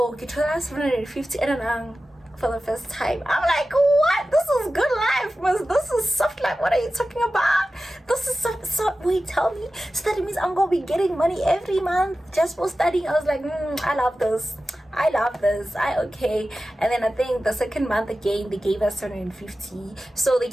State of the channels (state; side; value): normal; both; correlation 0.94